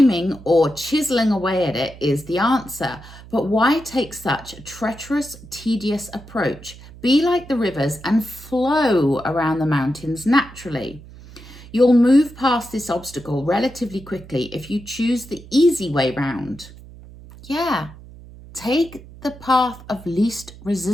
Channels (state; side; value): noise; right; hum, 18 dB below the sound